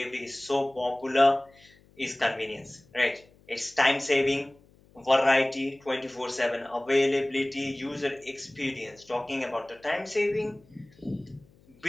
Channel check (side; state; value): left; noise; hum, 29 dB below the sound